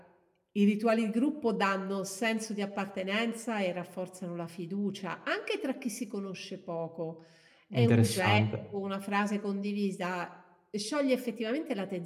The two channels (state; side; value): identical; both; correlation 1.00